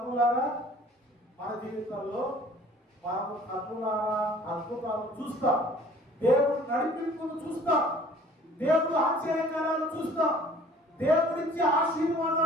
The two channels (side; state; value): both; normal; correlation 0.52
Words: మన జీవితంలో మనము కన్నులారా అద్భుతాలు చూస్తాం, దేవుడు నడిపింపును చూస్తాం, దేవుడు ఆశ్చర్యకారాలు చూస్తాం, దేవుడిచ్చే